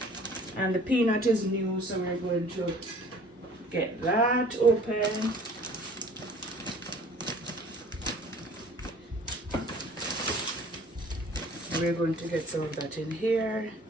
and the peanut is new, so we're going to get that open. And we're going to get some of that in here.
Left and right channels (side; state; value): both; normal; correlation 0.50